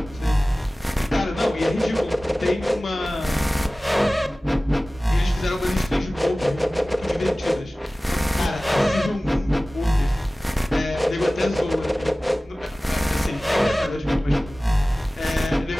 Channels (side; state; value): both; normal; correlation 0.97